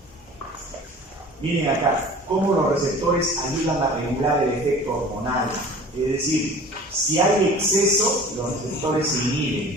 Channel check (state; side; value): normal; both; correlation 0.43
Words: Miren acá, cómo los receptores ayudan a regular el efecto hormonal. Es decir, si hay exceso, los receptores se